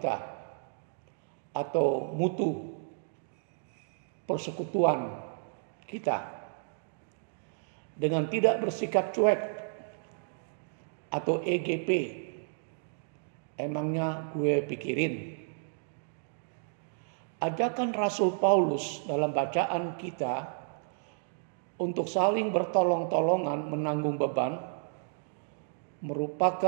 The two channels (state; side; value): silent; left; digital silence